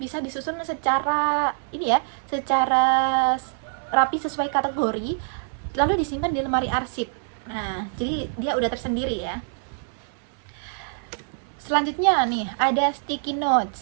disusun secara ini ya, secara rapi sesuai kategori, lalu disimpan di lemari arsip. Nah, jadi dia udah tersendiri ya. Selanjutnya nih ada sticky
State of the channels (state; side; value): silent; left; 62 dB below the other